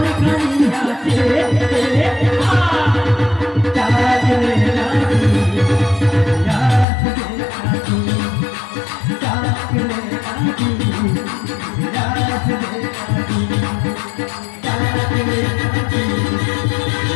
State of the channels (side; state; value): right; drops out; at 6.9 s